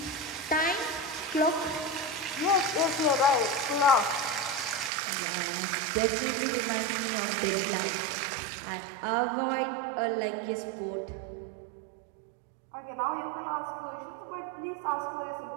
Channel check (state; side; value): drops out; left; at 4.9 s